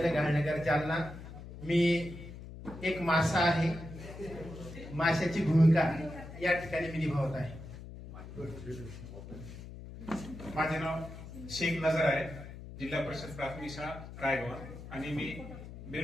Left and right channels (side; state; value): left; noise; hum, 13 dB below the sound